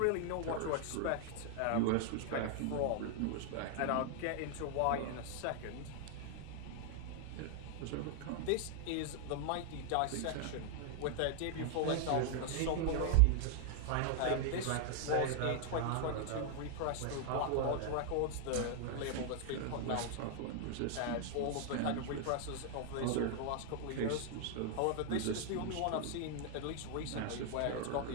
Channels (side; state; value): both; different; correlation 0.00